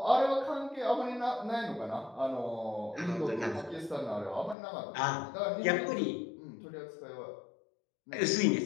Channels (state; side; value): drops out; right; at 4.5 s